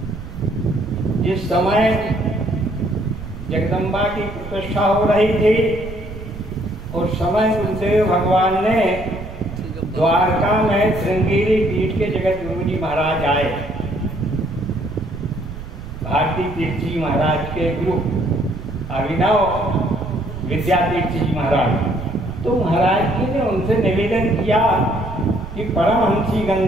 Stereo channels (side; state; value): right; noise; rumble, 11 dB below the sound